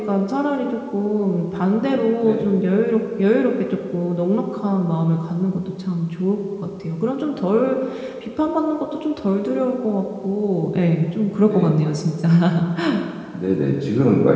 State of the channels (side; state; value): both; identical; correlation 1.00